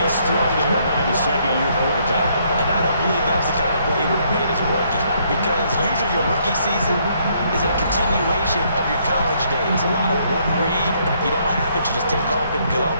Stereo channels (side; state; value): both; inverted; correlation -0.69